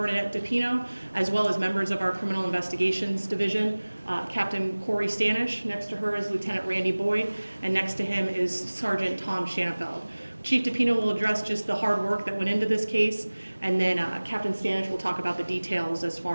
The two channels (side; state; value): both; inverted; correlation -1.00